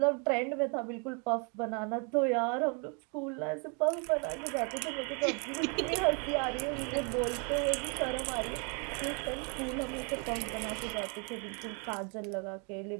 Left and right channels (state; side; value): quieter; left; 35.6 dB